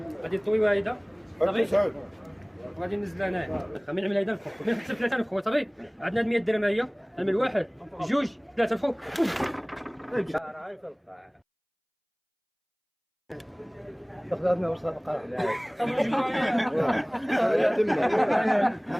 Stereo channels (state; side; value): identical; both; correlation 1.00